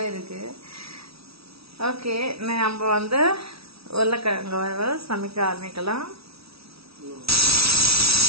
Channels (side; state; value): left; late; 0.76 ms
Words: இருக்கு. ஓகே, நம்ம வந்து உருளைக்கிழங்கு வறுவல் சமைக்க ஆரம்பிக்கலாம்.